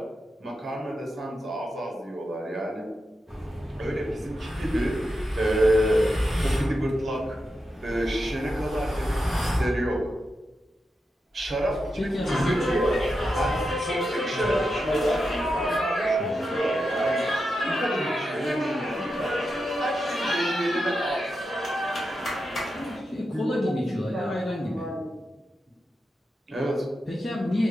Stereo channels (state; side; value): normal; both; correlation 0.88